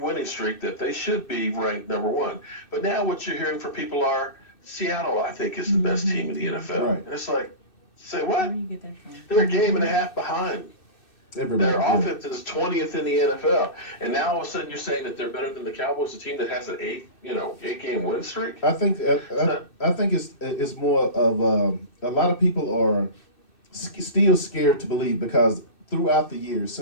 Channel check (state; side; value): late; right; 2.6 ms